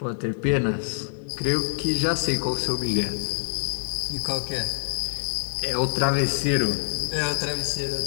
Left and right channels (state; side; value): silent; right; digital silence